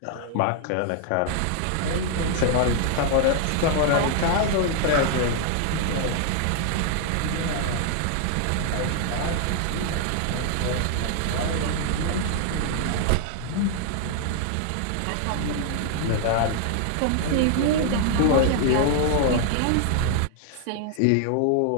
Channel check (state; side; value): different; both; correlation 0.00